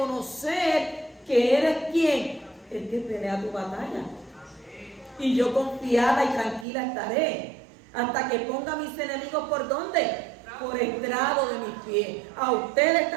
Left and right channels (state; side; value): drops out; left; at 6.7 s